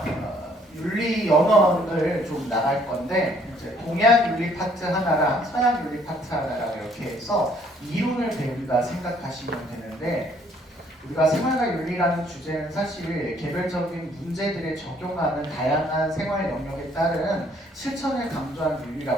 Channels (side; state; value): both; normal; correlation 0.63